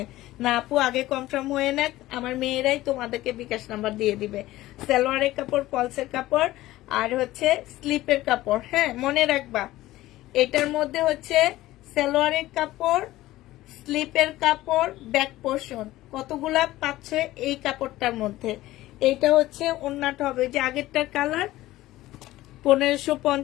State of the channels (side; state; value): right; quieter; 16.4 dB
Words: না আপু, আগে কনফার্ম হয়ে নেক, আমার মেয়েরাই তোমাদেরকে বিকাশ নাম্বার দিয়ে দিবে। সালোয়ারের কাপড়, পলসের কাপড় আর হচ্ছে স্লিপের কাপড়। হ্যাঁ মনে রাখবা, এটার মধ্যে হচ্ছে সালোয়ারের কাপড়, স্লিপের কাপড়, ব্যাক পোর্শন কতগুলা পাচ্ছ এই কাপড়টার মধ্যে। এইটা হচ্ছে ওড়নাটা হবে, যে আগেরটার কালার